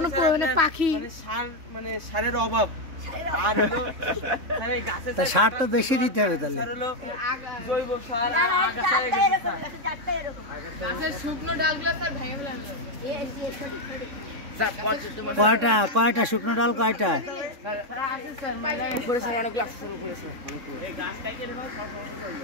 পাখি মানে সারের অভাব। আর হলো তা সার তো বেশি দিতে হবে তাহলে। জৈব সার শুকনো ডালগুলো স্যার ভেঙে ফেলা কয়টা শুকনো ডাল কয়টা?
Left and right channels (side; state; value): left; late; 3.6 ms